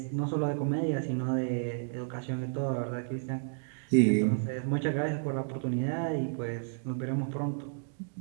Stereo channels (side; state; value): left; silent; digital silence